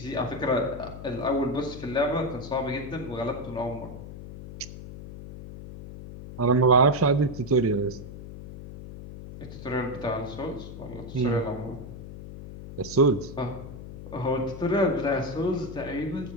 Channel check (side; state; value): left; noise; hum, 12 dB below the sound